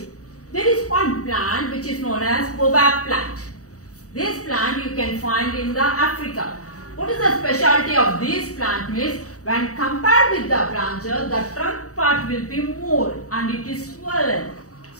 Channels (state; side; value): late; right; 0.66 ms